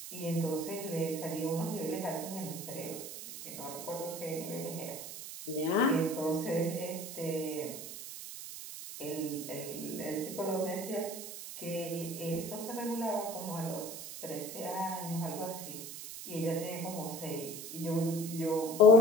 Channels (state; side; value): noise; right; hiss, 9 dB below the sound